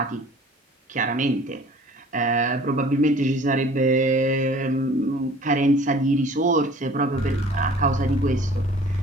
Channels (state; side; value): normal; both; correlation 0.49